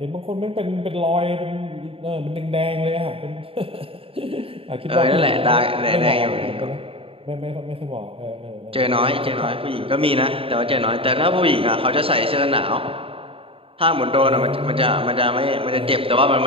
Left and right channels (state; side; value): late; left; 0.27 ms